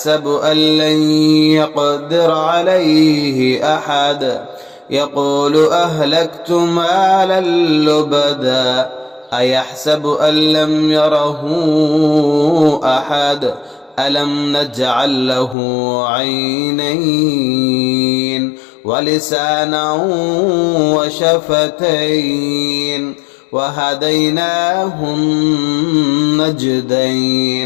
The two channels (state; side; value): drops out; right; at 15.6 s